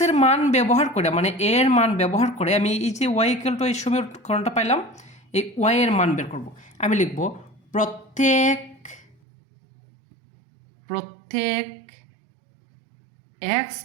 মান ব্যবহার করে, মানে এর মান ব্যবহার করে আমি এই যে ওয়াই ইকুয়াল টু এই সমীকরণটা পাইলাম, এই ওয়াই এর মান বের করব। আমি লিখব প্রত্যেক এক্স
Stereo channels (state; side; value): drops out; left; at 9.2 s